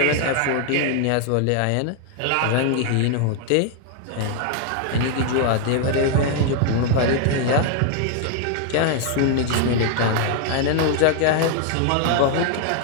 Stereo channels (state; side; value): different; both; correlation 0.00